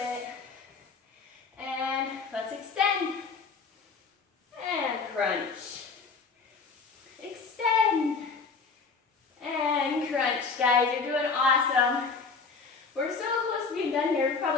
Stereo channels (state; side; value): quieter; right; 4.8 dB